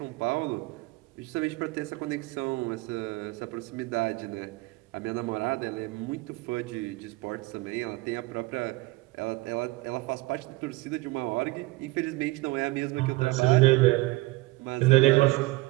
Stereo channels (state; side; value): quieter; left; 21.6 dB